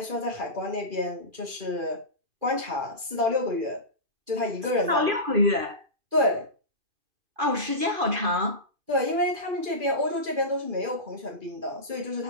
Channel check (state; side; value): late; left; 2.5 ms